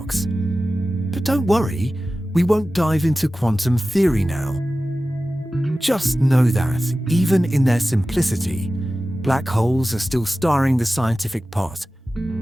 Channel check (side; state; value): both; normal; correlation 0.95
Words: But don't worry, we won't dive into quantum theory now. Just know that, even in their simplicity, black holes are still stirring the scientific pot.